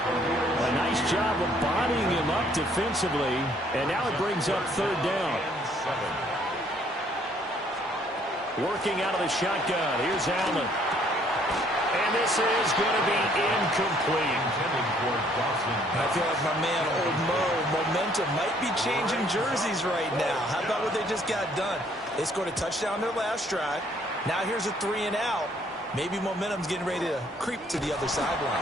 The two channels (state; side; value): normal; both; correlation 0.63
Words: A nice job of bodying him up defensively. And now it brings up 3rd down. Working out of the shotgun. Here's Allen. And this is going to be incomplete. I feel like my man, Old Mo, momentum might be changing jerseys right now. How about what they just got done? They scored a touchdown their last drive. Now here's a 3 and out. Maybe momentum's getting ready to creep to the other